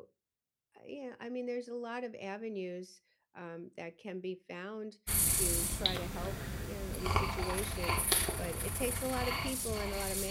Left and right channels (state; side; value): identical; both; correlation 1.00